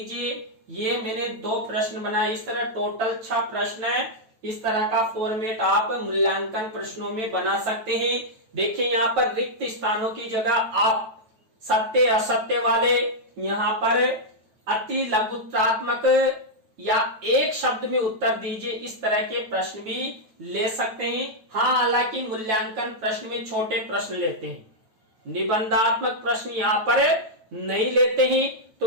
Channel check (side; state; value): left; late; 9.1 ms